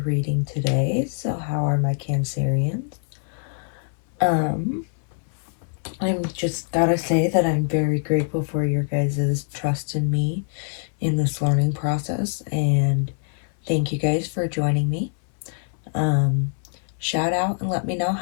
reading today. So, how are my Cancerians? I'm just gotta say that I'm very grateful for your guys' trust in me in this learning process, and thank you guys for joining me. Shout out and let me know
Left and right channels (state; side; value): silent; right; 63 dB below the other